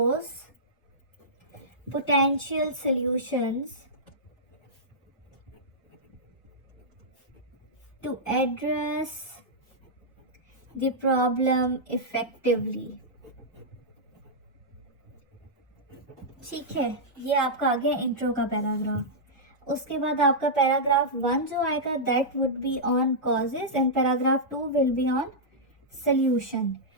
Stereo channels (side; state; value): both; normal; correlation -0.11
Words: potential solutions to address the problem effectively। ठीक है, ये आपका आ गया इंट्रो का पैराग्राफ। उसके बाद आपका पैराग्राफ 1 जो आएगा that would be on causes and paragraph 2 will be on solution.